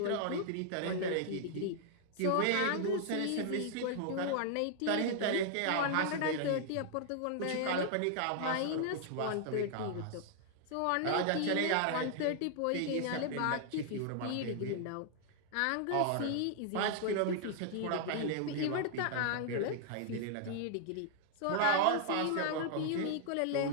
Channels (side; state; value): both; different; correlation -0.01